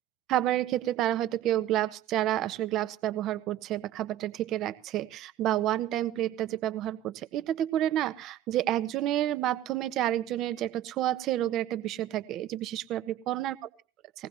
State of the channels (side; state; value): left; quieter; 12.7 dB